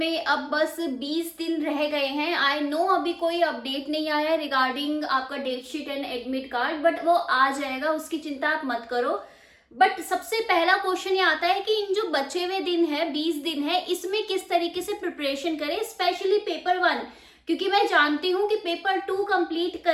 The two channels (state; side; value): identical; both; correlation 1.00